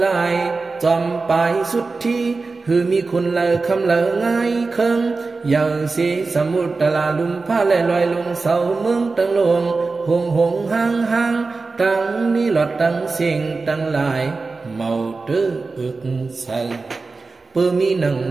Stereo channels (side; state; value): left; quieter; 4.0 dB